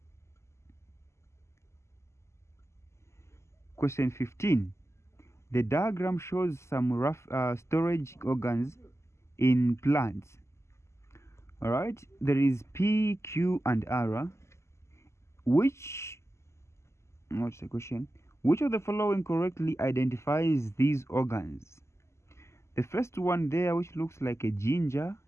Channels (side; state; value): right; late; 0.13 ms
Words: Question 15. The diagram shows some rough storage organs in plants. All right, there is P, Q, and R. What's the question? Which of the following correctly identifies these organs? The first one there, which looks like a ginger,